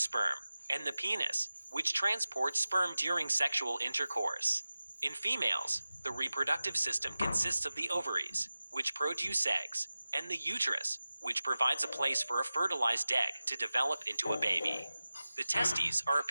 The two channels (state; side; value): inverted; both; correlation -0.96